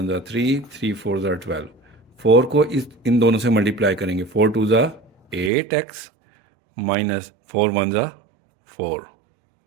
ज़ा 3, 3 4 ज़ा 12। 4 को इन दोनों से मल्टीप्लाई करेंगे। 4 2 ज़ा 8x माइनस 4 1 ज़ा 4।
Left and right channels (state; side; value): drops out; left; at 5.5 s